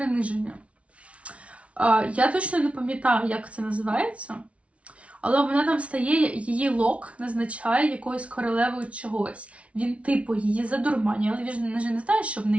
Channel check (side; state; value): left; late; 0.063 ms